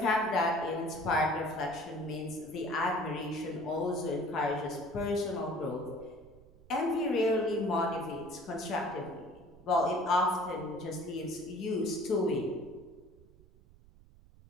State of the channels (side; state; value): right; noise; rumble, 24 dB below the sound